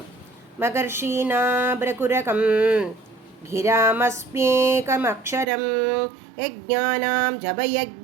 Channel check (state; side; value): drops out; left; at 5.5 s